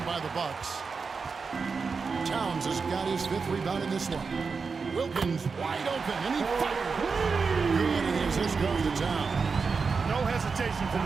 by the Bucks. Towns has got his 5th rebound in this one. Wilkins wide open, and he fired. Good, and his assist goes to Towns. No hesitation from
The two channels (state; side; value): quieter; left; 5.0 dB